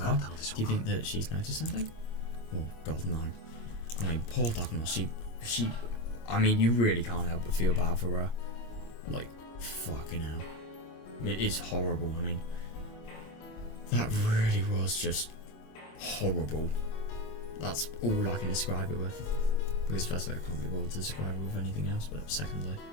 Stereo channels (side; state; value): right; late; 25 ms